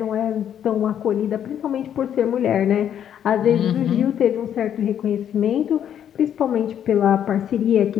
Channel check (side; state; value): right; quieter; 9.6 dB